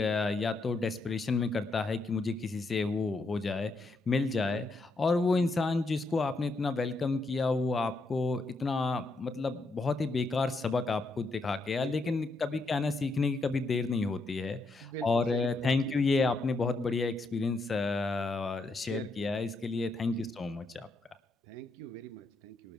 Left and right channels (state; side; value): quieter; right; 3.2 dB